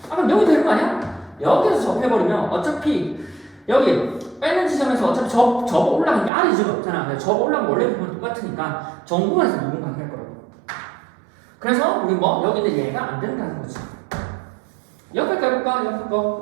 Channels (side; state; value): left; drops out; at 6.3 s